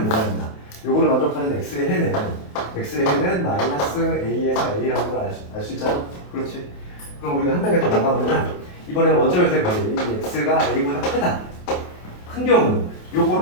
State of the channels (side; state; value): right; late; 28 ms